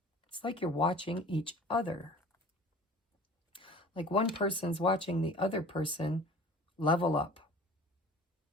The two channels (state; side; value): normal; both; correlation 0.44